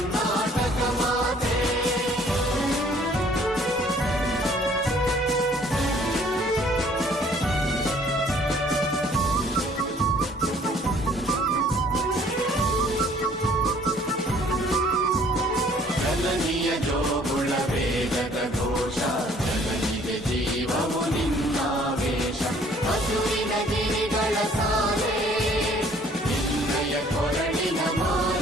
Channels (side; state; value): both; normal; correlation 0.58